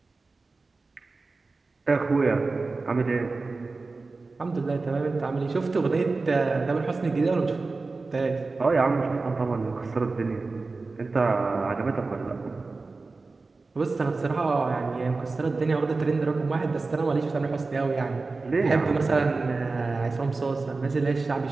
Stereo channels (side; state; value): left; quieter; 3.8 dB